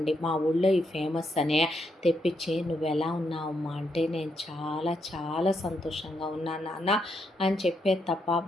మా ఊళ్ళో ఈ ఫేమస్ అనే తెప్పించి, నువ్వు ఎలా ఉన్నావమ్మా అంటే, నేను చాలా చాలా సంతోషంగా ఉన్నాను నాన్న అని చెప్పేది తప్ప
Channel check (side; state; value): both; normal; correlation 0.79